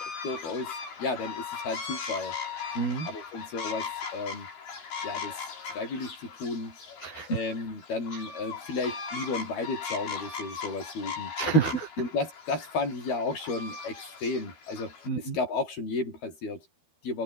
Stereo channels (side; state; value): right; late; 12 ms